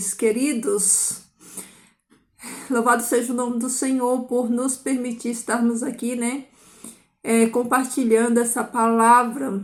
queridos. Louvado seja o nome do Senhor por nos permitir estarmos aqui, né? Compartilhando essa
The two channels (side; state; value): both; identical; correlation 1.00